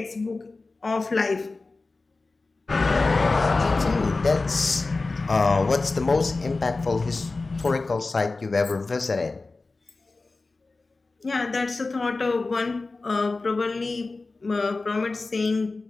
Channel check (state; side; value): quieter; right; 3.6 dB